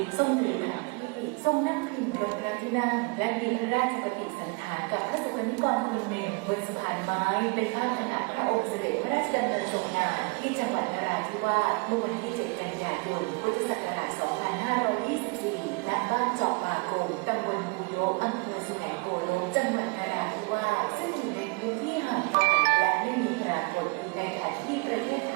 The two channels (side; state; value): left; quieter; 30.9 dB